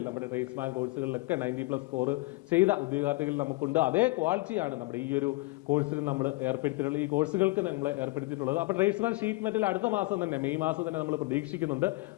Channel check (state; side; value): quieter; right; 23.2 dB